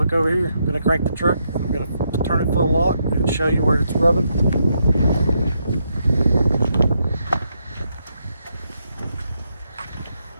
over here. I'm going to crank the truck, I'm going to turn it full lock and show you where it's rubbing.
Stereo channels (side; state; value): both; inverted; correlation -0.79